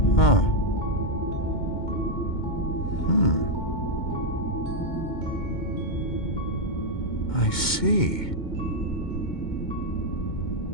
Huh. I see.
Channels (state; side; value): late; right; 2.2 ms